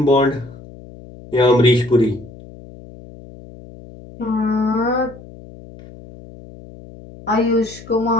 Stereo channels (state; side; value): noise; left; hum, 19 dB below the sound